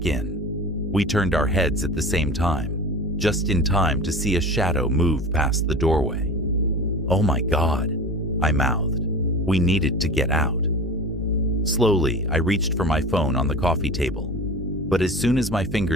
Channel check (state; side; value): normal; both; correlation 0.34